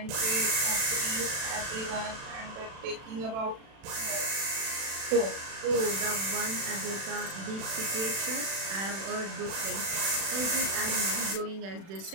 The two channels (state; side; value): late; left; 36 ms